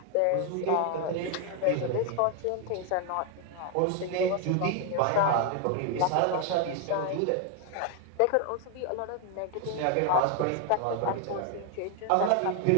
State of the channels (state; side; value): different; both; correlation 0.01